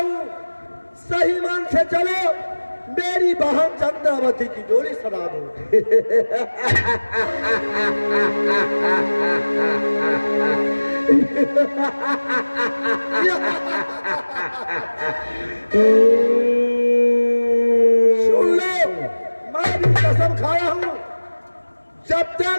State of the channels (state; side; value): inverted; both; correlation -1.00